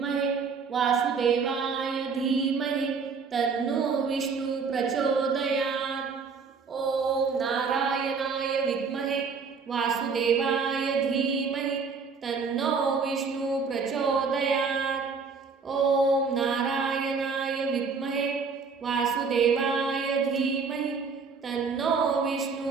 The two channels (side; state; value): left; quieter; 5.2 dB